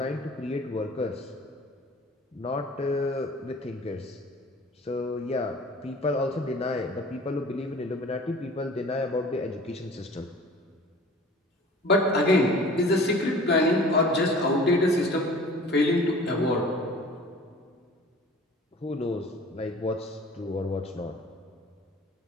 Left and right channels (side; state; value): both; normal; correlation 0.45